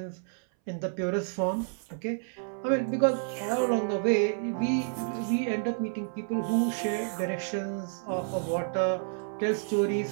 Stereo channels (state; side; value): silent; left; 58 dB below the other